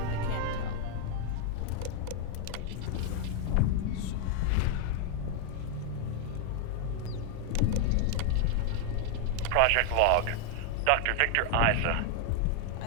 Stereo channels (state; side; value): different; both; correlation 0.00